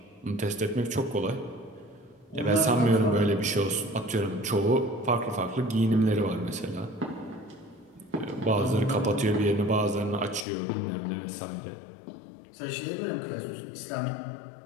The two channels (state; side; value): drops out; right; at 10.5 s